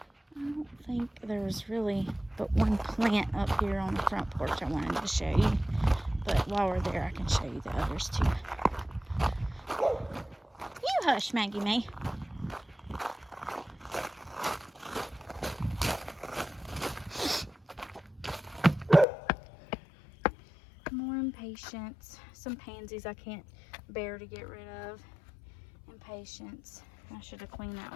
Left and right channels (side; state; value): right; drops out; at 19.1 s